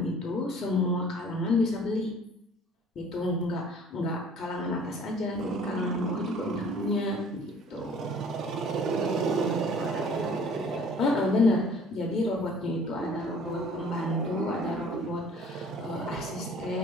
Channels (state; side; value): normal; both; correlation 0.51